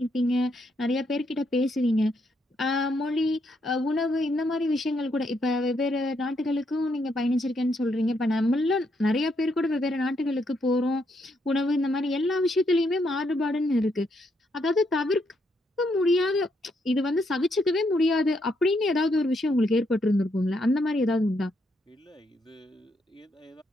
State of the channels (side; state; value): both; normal; correlation 0.76